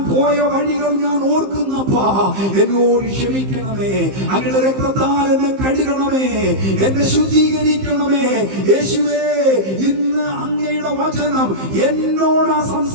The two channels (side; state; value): left; late; 15 ms